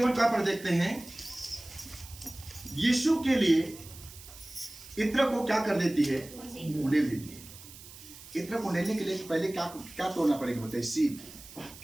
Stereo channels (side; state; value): right; noise; hiss, 17 dB below the sound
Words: का पर देखते हैं। यीशु के लिए इत्र को क्या कर देती है, उंडेल देती है। इत्र को उंडेलने के लिए पहले क्या तोड़ना पड़ेगा, बताइए? सीप।